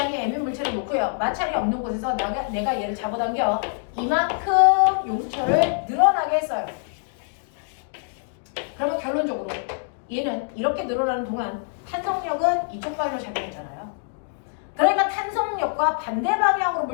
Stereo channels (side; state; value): right; silent; digital silence